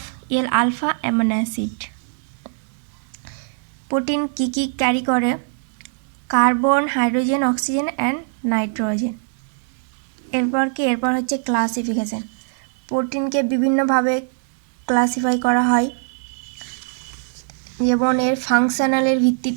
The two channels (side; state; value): left; silent; digital silence